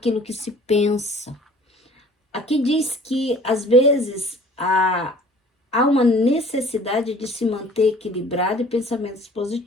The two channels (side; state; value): both; normal; correlation 0.51